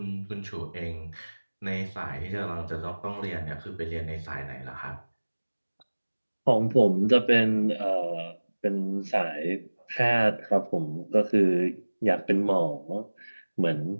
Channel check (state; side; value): inverted; both; correlation -1.00